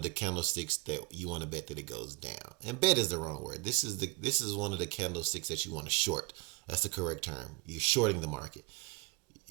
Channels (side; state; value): left; quieter; 27.3 dB